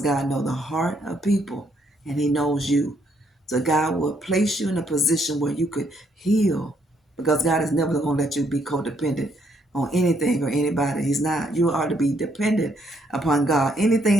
God knows the heart of people and he knows you. So God will place you in a position where you could heal, because God is never going to let you be codependent on anything or anybody. He's not. You are to be dependent upon God.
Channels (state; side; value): normal; both; correlation 0.72